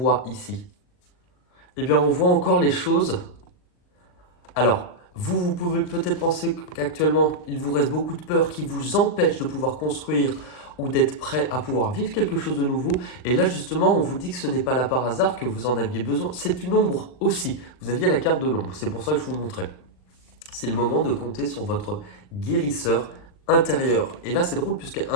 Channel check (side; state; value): right; late; 39 ms